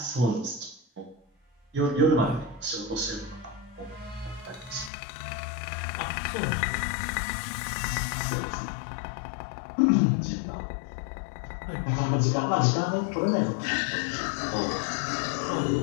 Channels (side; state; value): right; drops out; at 4.9 s